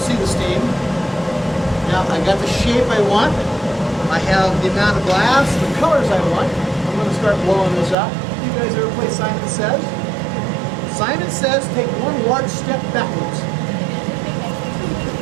the steam. Now I got the shape I want. I have the amount of glass, the colors I want. I'm going to start blowing this up. You guys ever play Simon Says? Simon Says, take one large step backwards.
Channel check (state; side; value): drops out; left; at 8.0 s